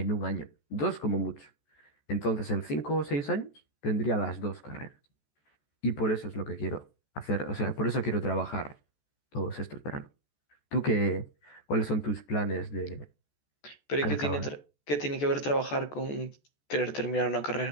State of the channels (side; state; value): right; late; 14 ms